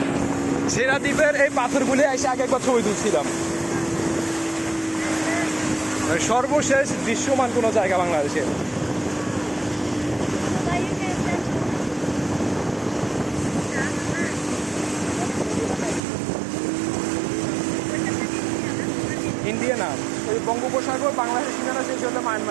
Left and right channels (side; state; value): left; drops out; at 16.0 s